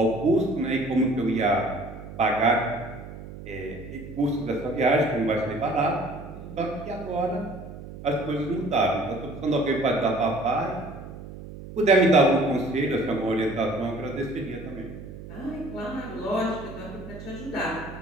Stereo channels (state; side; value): noise; right; hum, 13 dB below the sound